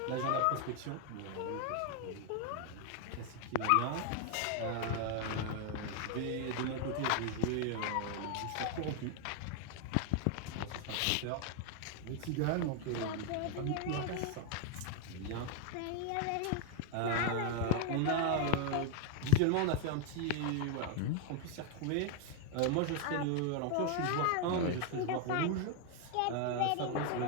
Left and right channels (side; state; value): both; different; correlation 0.00